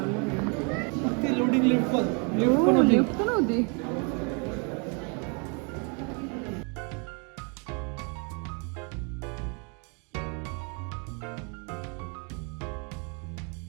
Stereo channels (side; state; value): left; quieter; 35.3 dB